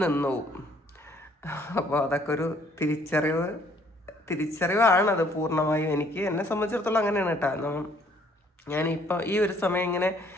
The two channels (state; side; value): normal; both; correlation 0.62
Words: നിന്നുപോകും. അപ്പോൾ അതൊക്കെ ഒരു തിരിച്ചറിവാണത് പൂർണ്ണമായും. എന്നെ സംബന്ധിച്ചിടത്തോളം അങ്ങനെയാണ് കേട്ടോ. ഞാനിപ്പോൾ ഈ ഒരു സമയം ഇങ്ങനെ